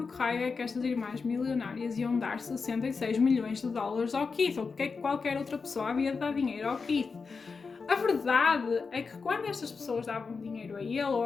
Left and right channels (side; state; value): right; quieter; 4.9 dB